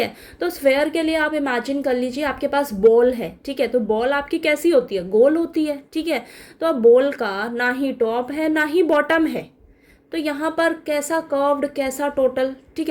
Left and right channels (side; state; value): both; identical; correlation 1.00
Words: तो स्फेयर के लिए आप इमेजिन कर लीजिए आपके पास बॉल है। ठीक है, तो बॉल आपकी कैसी होती है, गोल होती है। ठीक है, तो अब बॉल का ना ही टॉप है ना ही बॉटम है, तो यहाँ पर कैसा कर्व्ड कैसा टोटल। ठीक